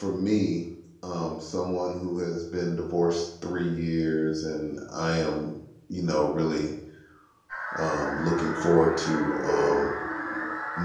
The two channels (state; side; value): identical; both; correlation 1.00